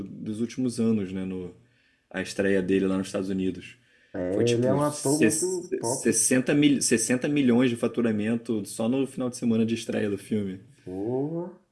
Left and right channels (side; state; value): both; identical; correlation 1.00